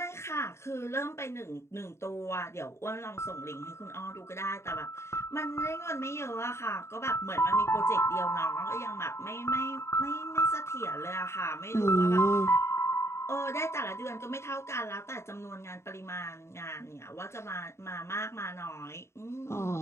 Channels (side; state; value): right; late; 0.13 ms